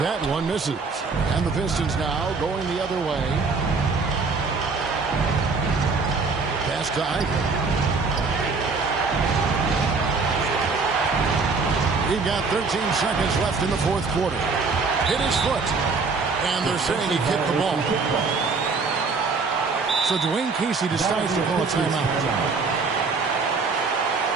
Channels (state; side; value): quieter; left; 4.4 dB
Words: That one misses. And the Pistons now going the other way. Pass to Ike. We've got 13 seconds left in the fourth quarter. Hit his foot. And they're saying he kicked the ball. So Dwayne Casey decides to call a timeout.